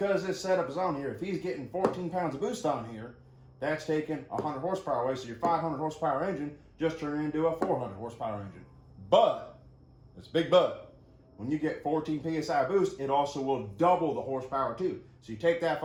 this setup is on here, if he's getting 14 pounds of boost on here, that's taking 100 horsepower away. So your 500 horsepower engine just turned into a 400 horsepower engine. But, it's a big but, when you get 14 PSI boost, it also will double the horsepower too. So you take that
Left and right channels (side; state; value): both; identical; correlation 1.00